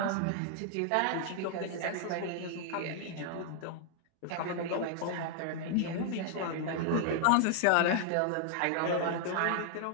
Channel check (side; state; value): both; different; correlation 0.00